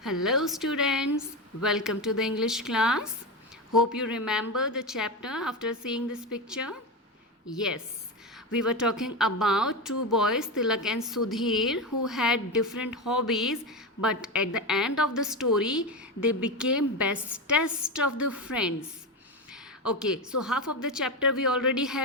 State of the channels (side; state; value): both; normal; correlation 0.16